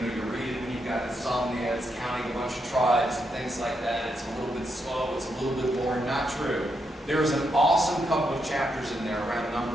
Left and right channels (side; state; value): both; normal; correlation 0.81